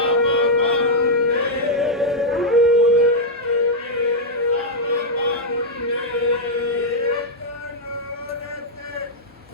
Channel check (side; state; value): both; normal; correlation -0.04